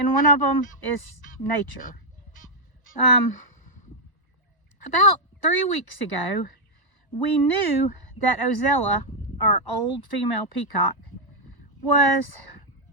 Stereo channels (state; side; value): late; right; 1.0 ms